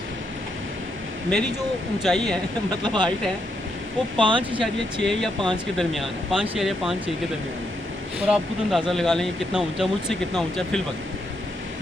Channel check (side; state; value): both; normal; correlation 0.79